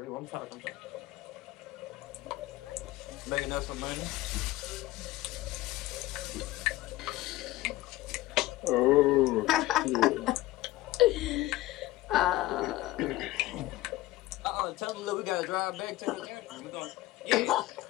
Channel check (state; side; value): quieter; right; 16.9 dB